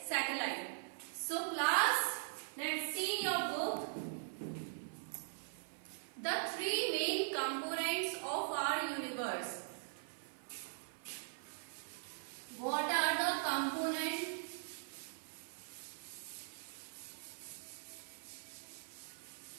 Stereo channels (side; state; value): left; silent; 50 dB below the other